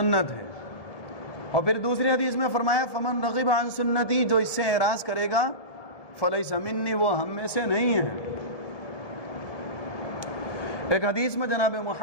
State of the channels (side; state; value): right; late; 1.7 ms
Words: ہے۔ اور پھر دوسری حدیث میں فرمایا فمن رغب عن سنتی، جو اس سے اعراض کرے گا فلیس منی، وہ ہم میں سے نہیں ہے۔ ایک حدیث میں جناب